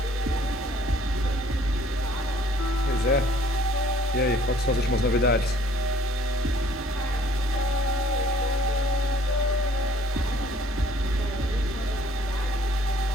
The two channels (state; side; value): normal; both; correlation 0.58